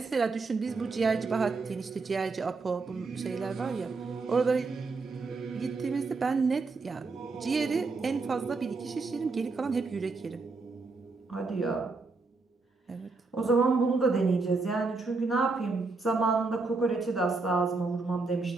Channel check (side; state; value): left; quieter; 4.0 dB